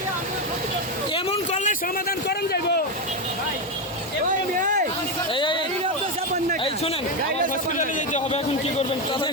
এমন করলে সমাধান করেন যাইব। এই শুনেন, আমার হসপিটালে যেতে হবে, এখন কি করবেন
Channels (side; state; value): both; normal; correlation 0.10